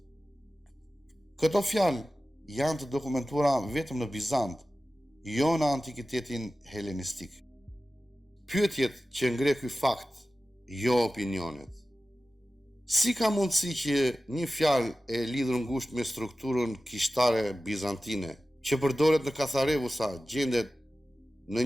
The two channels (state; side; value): normal; both; correlation 0.95